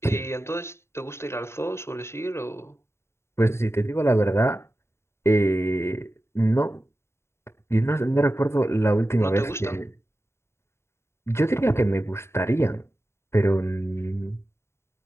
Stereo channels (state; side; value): late; right; 0.13 ms